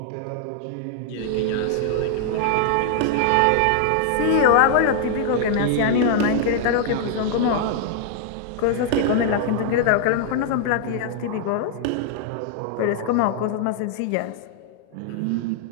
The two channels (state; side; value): different; both; correlation 0.00